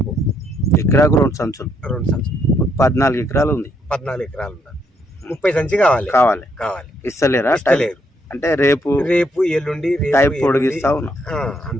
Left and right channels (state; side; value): normal; both; correlation 0.73